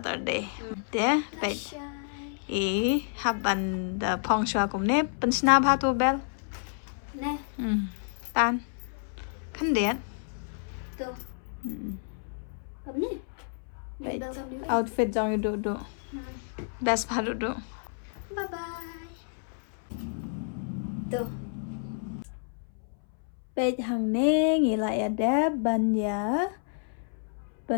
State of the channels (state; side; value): silent; right; 58 dB below the other